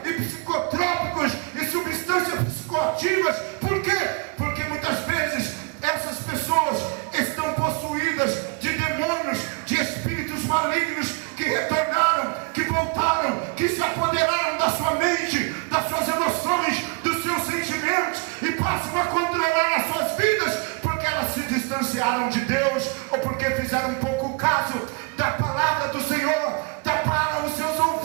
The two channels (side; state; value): left; quieter; 31.1 dB